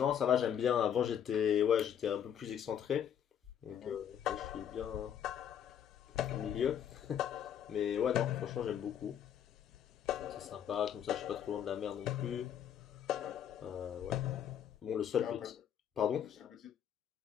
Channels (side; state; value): right; quieter; 9.2 dB